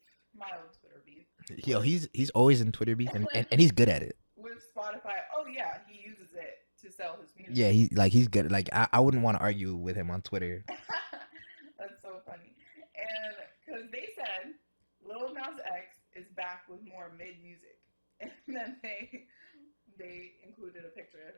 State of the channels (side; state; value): both; inverted; correlation -1.00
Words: mild Twitter beef. Yo, he's always in Twitter beef, and he's good at it. With Spotify, oh yeah, he uses it to sell his music. Yeah, he's good. Like I wouldn't want to argue with him on Twitter. That's so funny. And because they said Lil Nas X is back with more mid music, and then they included a picture of